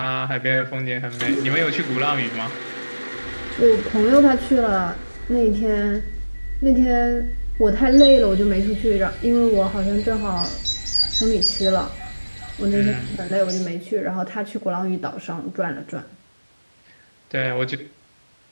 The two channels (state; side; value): inverted; both; correlation -1.00